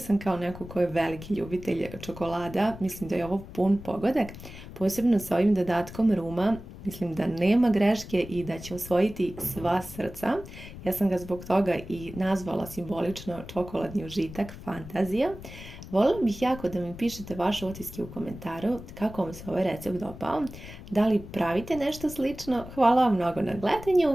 kao neko ko je veliki ljubitelj čokolada. Mislim da je ovo pun pogodak, posebno sa ovim dodatkom ruma. Mislim da nema greške i da će osvojiti sva srca. Ja sam ga zbog toga i nazvala simbolično čokoladni užitak, fantazija. Voljela bih jako da mi pišete vaše utiske u komentaru kako vam se ovaj recept dopao, da li pravite nešto slično. Hvala vam mnogo na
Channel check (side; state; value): left; noise; rumble, 14 dB below the sound